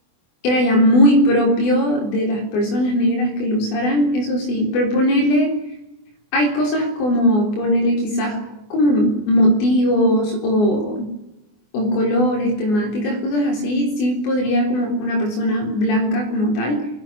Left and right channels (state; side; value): late; right; 24 ms